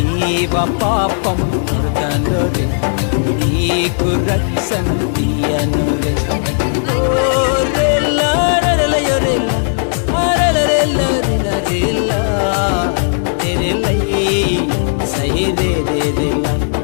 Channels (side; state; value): right; silent; digital silence